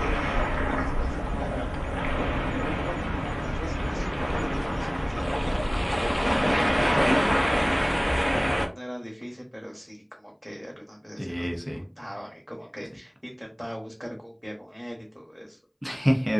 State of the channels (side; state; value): both; identical; correlation 1.00